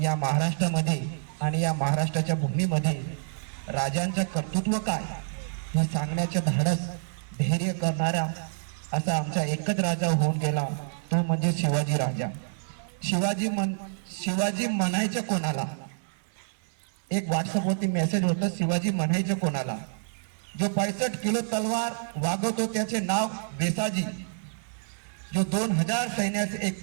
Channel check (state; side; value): silent; left; digital silence